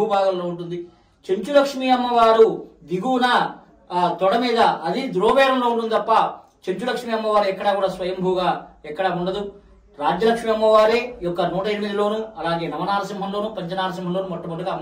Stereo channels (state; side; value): identical; both; correlation 1.00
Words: భాగంలో ఉంటుంది. చెంచులక్ష్మి అమ్మవారు దిగువన తొడ మీద అది ద్రోవేరంలో ఉంటుంది తప్ప చెంచులక్ష్మి అమ్మవారు ఎక్కడా కూడా స్వయంభూగా ఎక్కడా ఉండదు. రాజ్యలక్ష్మి అమ్మవారే యొక్క 108లోను అలాగే నవనారసింహంలోను పంచనారసింహంలోను మొట్టమొదటిగా